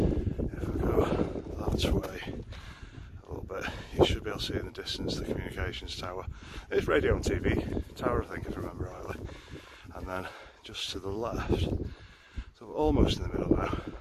if I go that way a little bit, you should be able to see in the distance the communications tower. It's radio and TV tower, I think, if I remember rightly. And then just to the left, so we're almost in the middle now,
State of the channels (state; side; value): identical; both; correlation 1.00